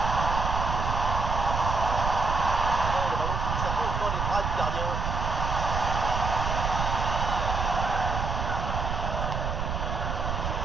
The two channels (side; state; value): right; noise; rumble, 2 dB below the sound